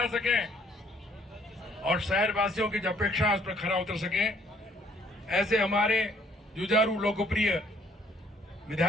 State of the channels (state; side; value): normal; both; correlation 0.63